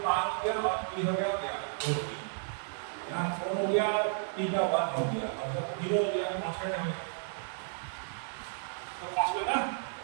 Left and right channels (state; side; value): silent; left; 56 dB below the other